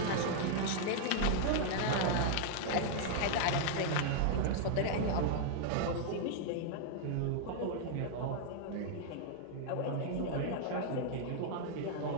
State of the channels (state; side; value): different; both; correlation -0.01